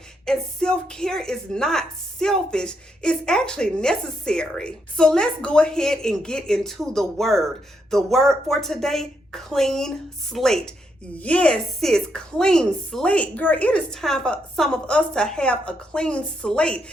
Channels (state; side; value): normal; both; correlation 0.79